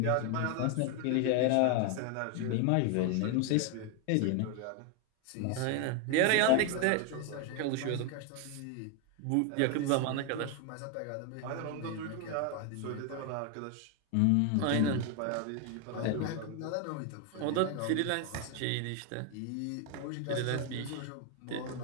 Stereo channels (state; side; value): different; both; correlation 0.01